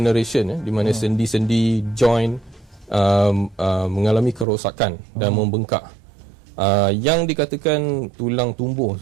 di mana sendi-sendi joint mengalami kerosakan dan membengkak. Yang dikatakan tulang tumbuh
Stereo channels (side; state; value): left; drops out; at 4.5 s